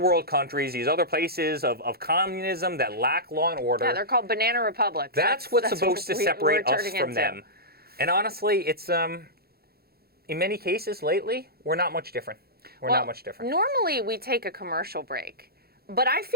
world countries, these other places of communism that lack law and order. Yeah, they're called banana republics. That's what's supposed to separate us from them. And honestly, it's in many cases lately, we're not much different. We're not much different. Normally we take a commercial break, but I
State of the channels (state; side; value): late; left; 0.45 ms